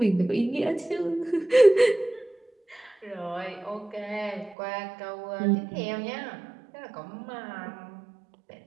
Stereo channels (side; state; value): left; drops out; at 4.5 s